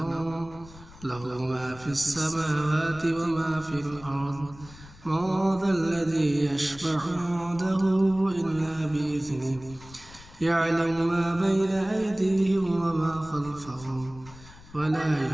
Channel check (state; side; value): noise; left; rumble, 20 dB below the sound